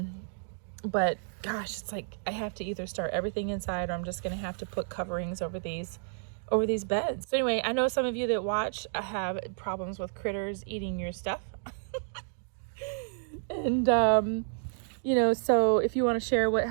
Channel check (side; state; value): left; silent; digital silence